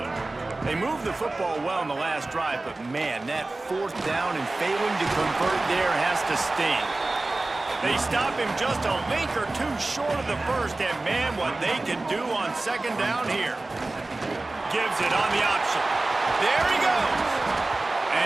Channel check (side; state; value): left; quieter; 3.0 dB